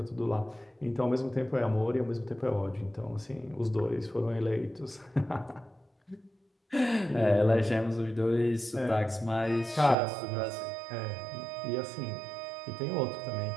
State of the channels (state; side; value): drops out; left; at 10.0 s